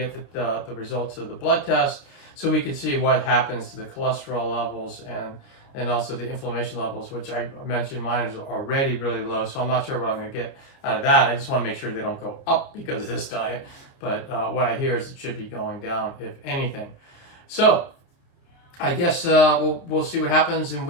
the results of the blood test, so we can see what happens to the cholesterol levels and also the inflammation levels, which I mentioned mine is already really low. So I'm not sure what I'm going to get out of that. I just want to make sure they don't go up because of this diet. But what I hear is it should be going down, if anything. So I guess we'll see what happens in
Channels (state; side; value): late; right; 29 ms